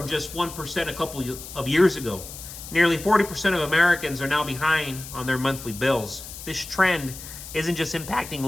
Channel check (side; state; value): left; noise; hiss, 13 dB below the sound